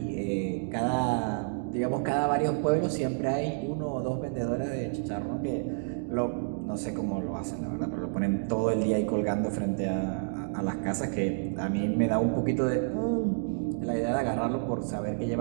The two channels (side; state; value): left; silent; digital silence